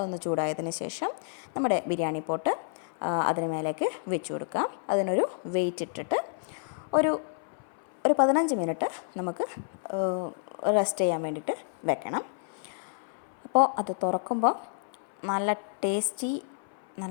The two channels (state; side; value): silent; right; 58 dB below the other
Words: ചൂടായതിന് ശേഷം നമ്മുടെ ബിരിയാണി പോട്ട് അതിന് മേലേക്ക് വെച്ച് കൊടുക്കാം. അതിനൊരു വെയിറ്റ് ഇട്ടിട്ട് ഒരു 15 മിനിറ്റ് നമുക്ക് റെസ്റ്റ് ചെയ്യാൻ വേണ്ടിയിട്ട് വെക്കണം. അപ്പോൾ അത് തുറക്കുമ്പോൾ നല്ല ടേസ്റ്റി,